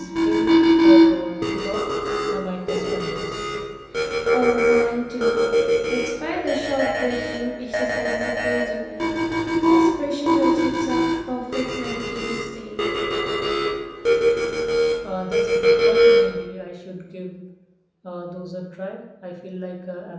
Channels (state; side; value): identical; both; correlation 1.00